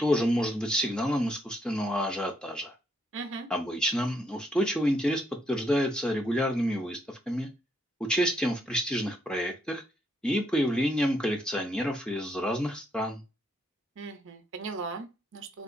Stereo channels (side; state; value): both; normal; correlation 0.74